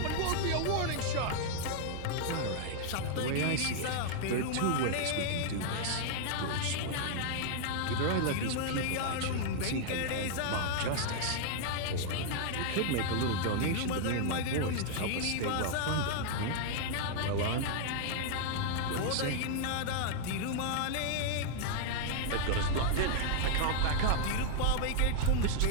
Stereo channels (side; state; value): both; different; correlation -0.01